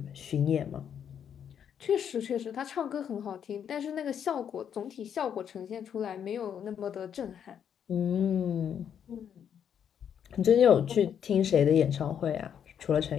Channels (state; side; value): quieter; right; 8.5 dB